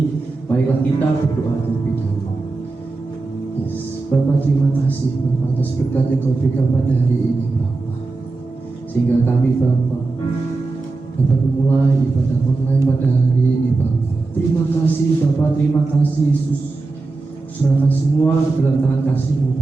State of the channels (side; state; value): left; quieter; 3.6 dB